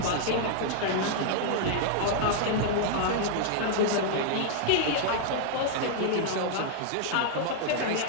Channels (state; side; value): different; both; correlation -0.01